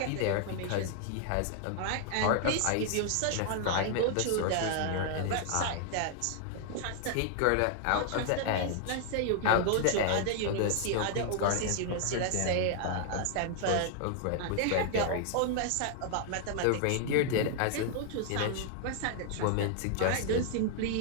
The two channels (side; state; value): both; different; correlation 0.00